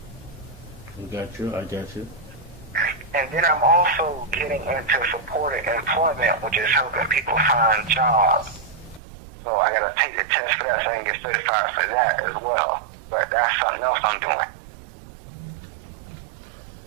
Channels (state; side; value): drops out; left; at 9.0 s